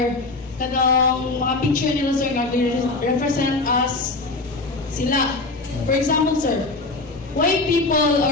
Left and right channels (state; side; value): quieter; right; 3.4 dB